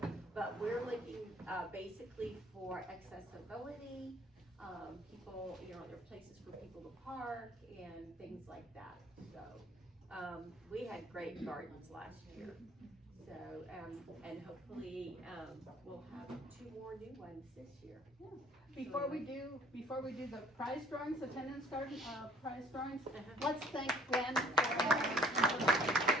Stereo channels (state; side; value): normal; both; correlation 0.57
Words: but we're looking basically for accessibility. People, there are places for people to park and things like that. So we had great gardens last year. So, and hopefully, we'll have 2 more new ones this year. before we do the prize drawings, attendance garden, prize drawings, let's thank Gwen for,